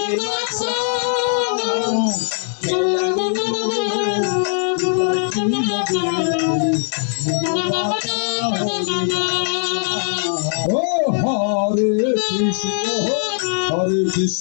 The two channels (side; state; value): right; silent; 64 dB below the other